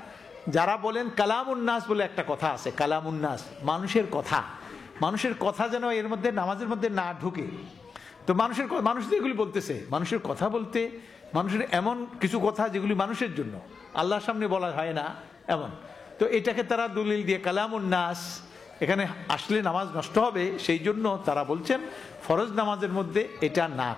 যারা বলেন কালামুন্নাস বলে একটা কথা আছে, কালামুন্নাস, মানুষের কথা যেন এর মধ্যে নামাজের মধ্যে না ঢুকে। তো মানুষ যেগুলি বলতেছে, মানুষের কথা বলতে, মানুষের এমন কিছু কথা যেগুলি মানুষের জন্য, আল্লাহর সামনে বলা হয় না এমন, তো এটাকে তারা দলিল দিয়ে কালামুন্নাস, এখানে আসলে নামাজ নষ্ট হবে, সেই জন্য তারা বলছেন ফরজ নামাজের মধ্যে এটা না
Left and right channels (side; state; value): right; quieter; 5.2 dB